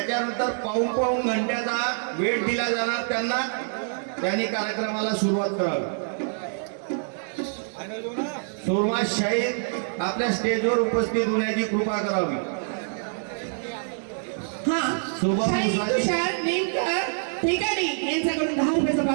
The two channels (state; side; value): silent; left; digital silence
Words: पाऊण घंट्याचा वेळ दिला जाणार त्यांना. त्यांनी कार्यक्रमाला सुरुवात करावी. सुरमा शाहीर आपल्या स्टेजवर उपस्थित होण्याची कृपा करावी. हा शुभम शाहीर मुसाजी. तुषार नेमकर ठिकाणी यांच्याकडून 10 रुपयाचा